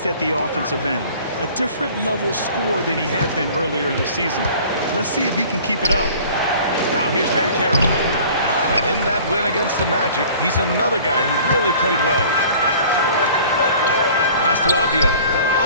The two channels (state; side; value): inverted; both; correlation -0.48